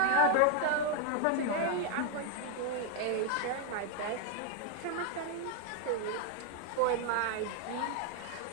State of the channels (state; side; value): different; both; correlation 0.00